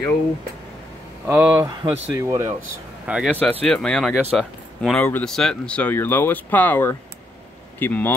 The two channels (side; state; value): both; normal; correlation 0.77